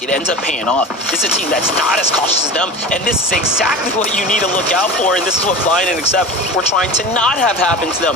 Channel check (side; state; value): both; normal; correlation 0.31